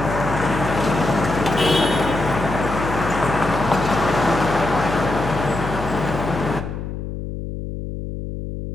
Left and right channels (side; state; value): left; noise; hum, 7 dB below the sound